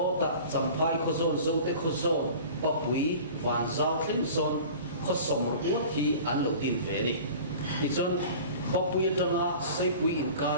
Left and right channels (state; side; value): inverted; both; correlation -0.41